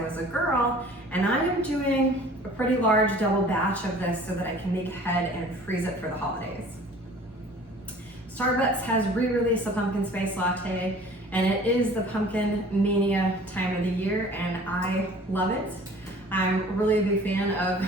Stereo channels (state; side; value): normal; both; correlation 0.47